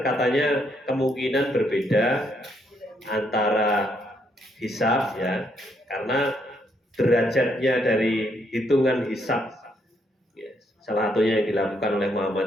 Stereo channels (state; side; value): normal; both; correlation 0.74